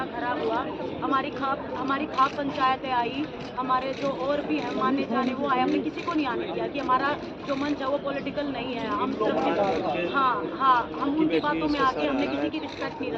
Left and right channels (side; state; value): both; identical; correlation 1.00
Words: खराब हुआ। हमारी खाप पंचायतें आई, हमारे जो और भी हैं माने जाने वो आए, हमने किसी को नहीं आने दिया कि हमारा जो मंच है वो पॉलिटिकल नहीं है। हम सिर्फ हम उनकी बातों में आके हमने किसी की रिस्पेक्ट नहीं